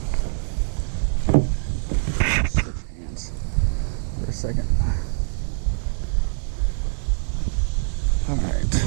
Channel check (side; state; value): left; silent; 63 dB below the other